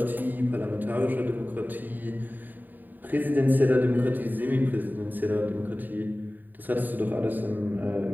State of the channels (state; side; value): late; left; 0.089 ms